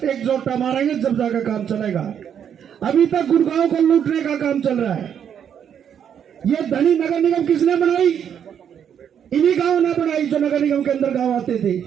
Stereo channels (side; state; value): left; quieter; 8.5 dB